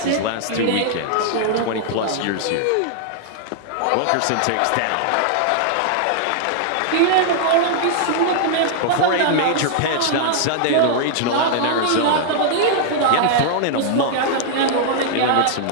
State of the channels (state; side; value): different; both; correlation -0.01